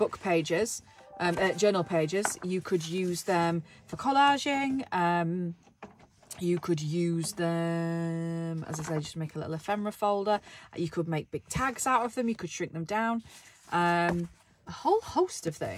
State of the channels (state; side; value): identical; both; correlation 1.00